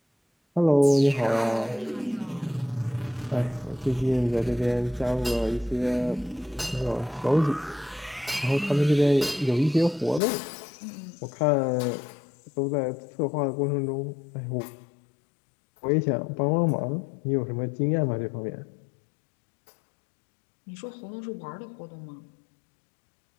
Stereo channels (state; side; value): drops out; right; at 10.2 s